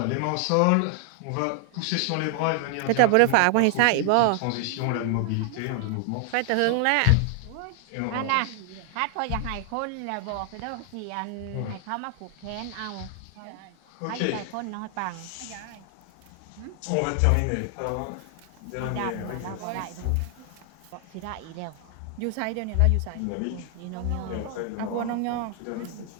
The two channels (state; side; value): different; both; correlation 0.00